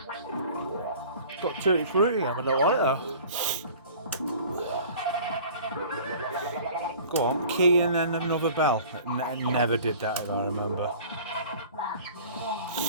Got tutti frutti, I don't want it though. Go on, key and then another bell. I never did that if I remember.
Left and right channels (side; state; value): both; inverted; correlation -0.46